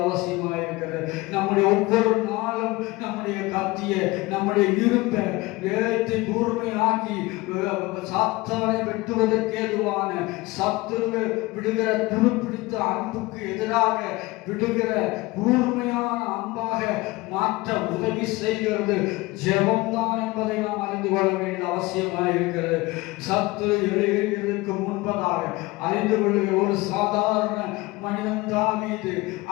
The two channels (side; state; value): right; quieter; 21.5 dB